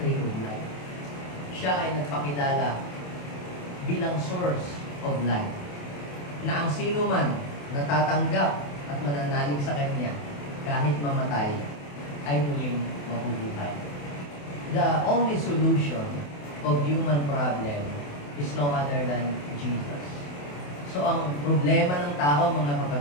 tree of life. Siya ay nagpakilala bilang source of life. Na ang sino man natatanggap at mananalig sa Kanya, kahit mamatay, ay muling mabubuhay. The only solution of human problem is no other than Jesus. So, ang problema ng tao, mga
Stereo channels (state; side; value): late; right; 28 ms